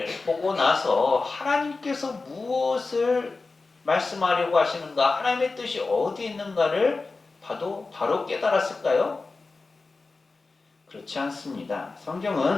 보고 나서 하나님께서 무엇을 말씀하려고 하시는가, 하나님의 뜻이 어디 있는가를 바로 깨달았을까요? 그렇지 않습니다.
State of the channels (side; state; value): right; quieter; 3.8 dB